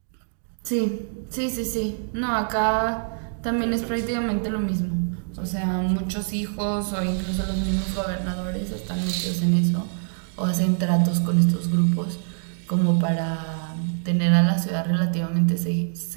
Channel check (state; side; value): silent; left; digital silence